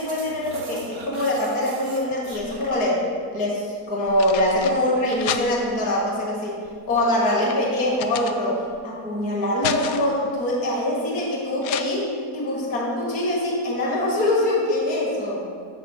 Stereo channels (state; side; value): late; right; 4.2 ms